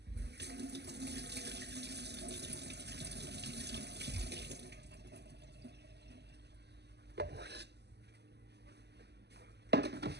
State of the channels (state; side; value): late; left; 0.49 ms